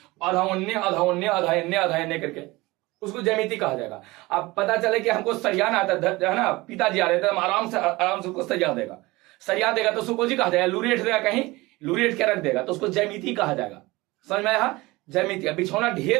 आधा उन्ने आधा उन्ने आधा इन्ने आधा इन्ने करके, उसको ज्यामिति कहा जाएगा। अब पता चले कि हमको सरियाना आता है ना, पिताजी आ रहे थे, हम आराम से उसको सरिया देगा तो उसको कहा जाएगा, लूरेट देगा, कहीं लूरेट के रख देगा तो उसको ज्यामिति कहा जाएगा। समझ में आया, ज्यामिति। बिछौना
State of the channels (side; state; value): left; quieter; 21.3 dB